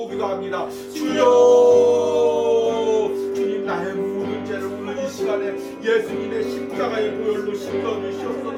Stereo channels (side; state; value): both; identical; correlation 1.00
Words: 기도합니다. 주여, 주님 나의 모든 죄를 오늘 이 시간에 예수님의 십자가의 보혈로 씻겨